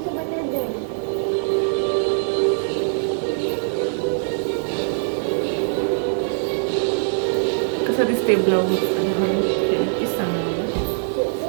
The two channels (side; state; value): left; silent; digital silence